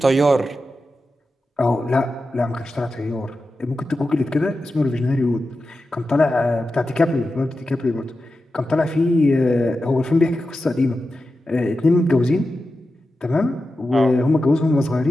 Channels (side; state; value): both; normal; correlation 0.91